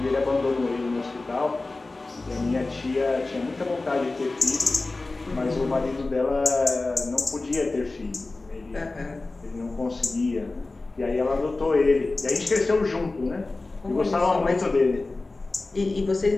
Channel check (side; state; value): right; quieter; 3.3 dB